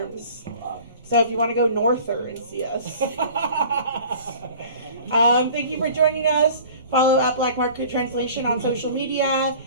So if you want to go norther and see us. Thank you for joining us. Follow at Black Market Translation on social media.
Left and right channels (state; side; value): inverted; both; correlation -0.45